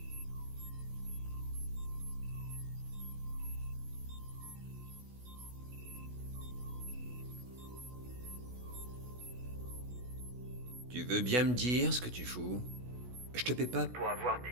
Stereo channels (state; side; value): late; left; 16 ms